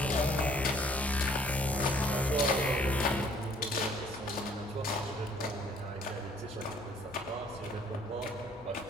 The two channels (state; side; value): normal; both; correlation 0.60